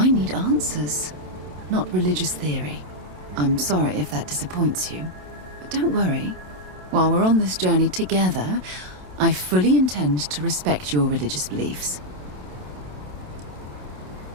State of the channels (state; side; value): late; left; 27 ms